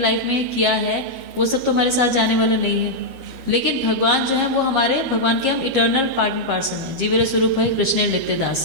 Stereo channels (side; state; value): left; late; 13 ms